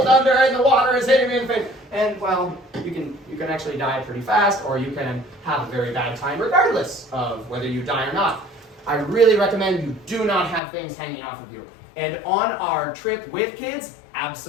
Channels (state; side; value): drops out; right; at 10.6 s